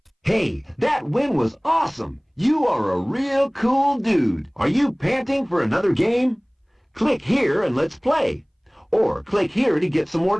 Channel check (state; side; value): identical; both; correlation 1.00